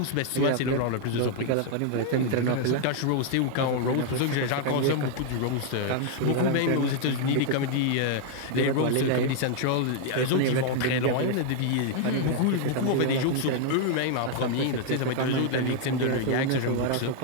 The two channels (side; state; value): both; different; correlation 0.00